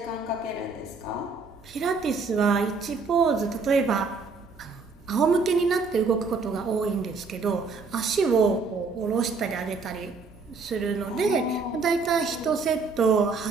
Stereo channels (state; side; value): quieter; left; 4.4 dB